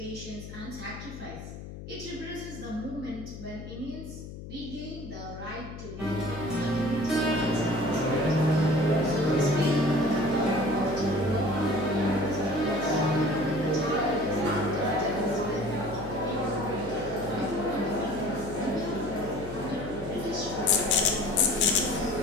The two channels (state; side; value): noise; left; hum, 12 dB below the sound